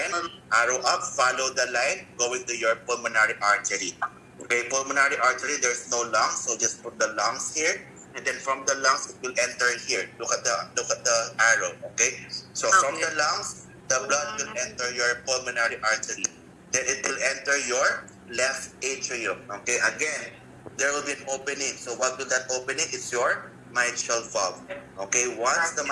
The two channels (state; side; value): identical; both; correlation 1.00